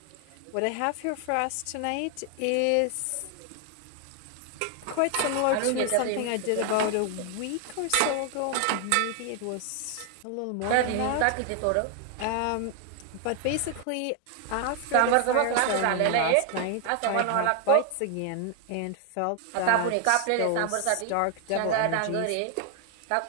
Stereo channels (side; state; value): both; different; correlation 0.00